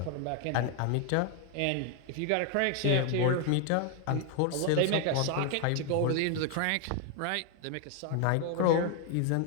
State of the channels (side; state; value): both; different; correlation 0.01